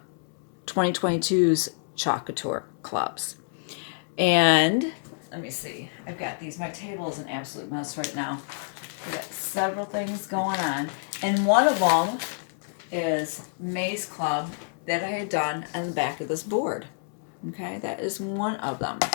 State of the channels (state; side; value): silent; right; 60 dB below the other